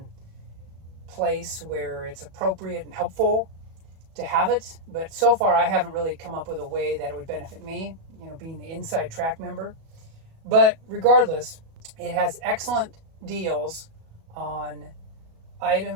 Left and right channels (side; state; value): left; late; 37 ms